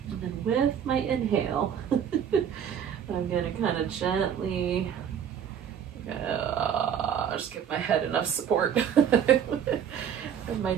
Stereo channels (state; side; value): quieter; left; 8.5 dB